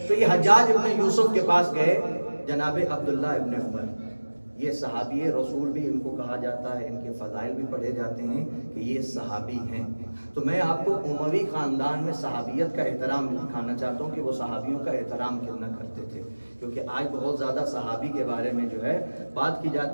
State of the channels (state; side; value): inverted; both; correlation -1.00